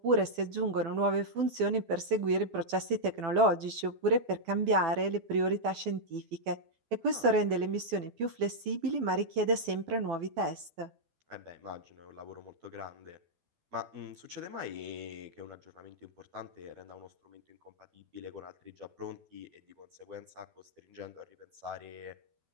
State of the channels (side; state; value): left; late; 12 ms